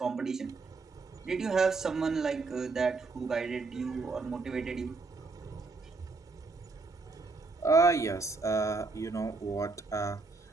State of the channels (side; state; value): left; quieter; 3.9 dB